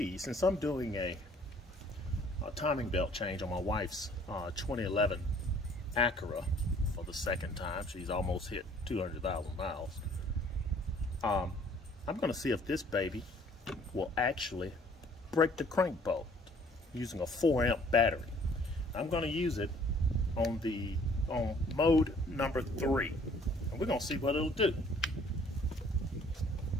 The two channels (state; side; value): normal; both; correlation 0.57